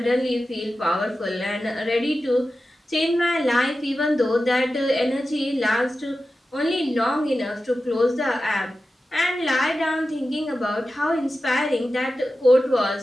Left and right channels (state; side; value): normal; both; correlation 0.93